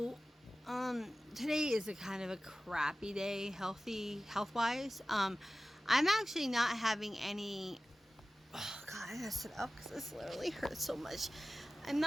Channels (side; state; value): both; normal; correlation 0.96